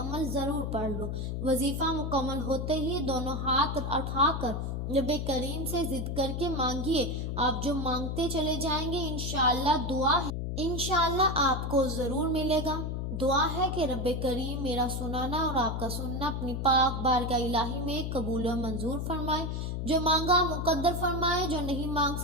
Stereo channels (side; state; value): left; noise; hum, 3 dB below the sound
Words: ضرور پڑھ لو۔ وظیفہ مکمل ہوتے ہی دونوں ہاتھ اٹھا کر رب کریم سے ضد کر کے مانگیے۔ آپ جو مانگتے چلے جائیں گے انشاءاللہ دعا ہے، انشاءاللہ آپ کو ضرور ملے گا۔ دعا ہے کہ رب کریم میرا سنانا اور آپ کا سننا اپنی پاک بارگاہ الہی میں قبول و منظور فرمائے۔ جو مانگا مقدر فرمائے، جو نہیں مانگ